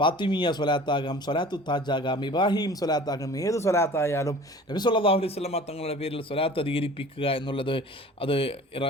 സ്വലാത്താകാം, സ്വലാത്തു താജാകാം, ഇബ്രാഹിം സ്വലാത്താകാം. ഏത് സ്വലാത്തായാലും നബി സല്ലല്ലാഹു അലൈഹി വസല്ലം തങ്ങളുടെ പേരിൽ സ്വലാത്ത് അധികരിപ്പിക്കുക എന്നുള്ളത് അത്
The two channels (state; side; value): normal; both; correlation 0.44